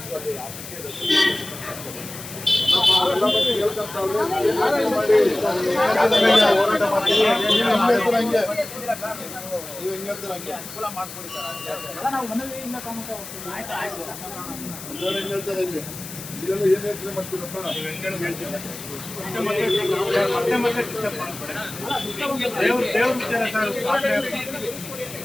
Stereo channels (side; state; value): left; noise; hiss, 12 dB below the sound